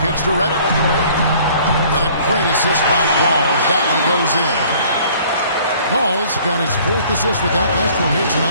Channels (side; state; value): both; inverted; correlation -0.55